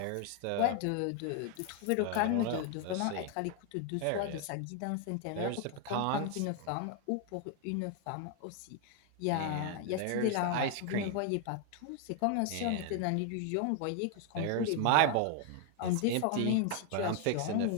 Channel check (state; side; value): different; both; correlation 0.00